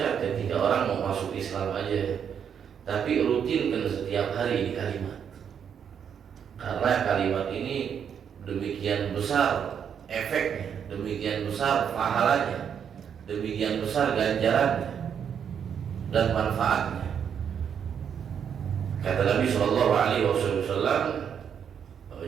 ketika orang mau masuk Islam aja, tapi rutinkan setiap hari ini kalimat. Karena kalimat ini demikian besar efeknya, demikian besar pahalanya, demikian besar ganjarannya dan manfaatnya. Kata Nabi Shallallahu Alaihi Wasallam,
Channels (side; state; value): left; quieter; 7.9 dB